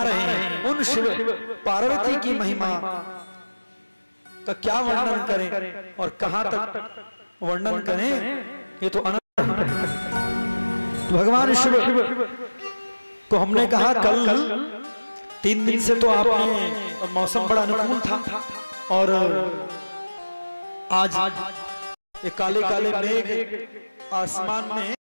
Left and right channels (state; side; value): inverted; both; correlation -1.00